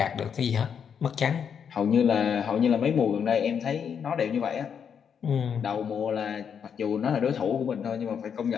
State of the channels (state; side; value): quieter; right; 7.4 dB